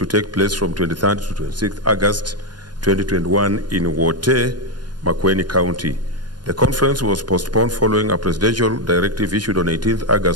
take place from 23rd to 26th August 2021 in Wote, Makueni County. The conference was postponed following a presidential directive issued on 18th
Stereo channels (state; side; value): late; left; 0.70 ms